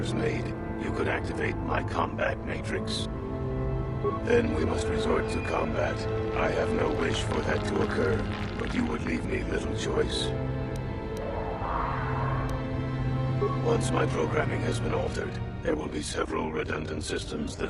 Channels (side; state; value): both; identical; correlation 1.00